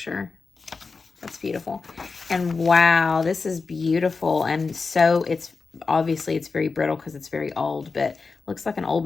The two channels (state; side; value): quieter; right; 4.5 dB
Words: That's beautiful. And wow, this is beautiful. And so it's obviously it's very brittle because it's very old, but looks like an old